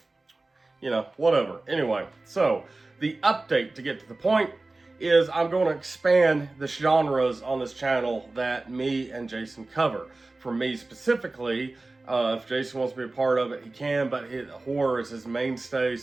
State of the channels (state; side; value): quieter; left; 3.2 dB